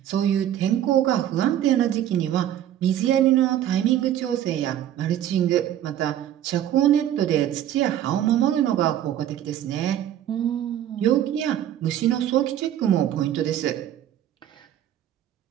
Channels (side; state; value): left; quieter; 11.3 dB